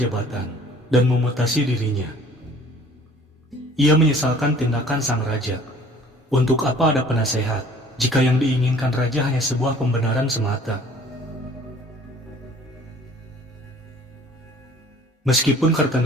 dan memutasi dirinya. Ia menyesalkan tindakan sang raja. Untuk apa ada penasehat jika yang diinginkan raja hanya sebuah pembenaran semata? Meskipun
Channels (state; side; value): normal; both; correlation 0.52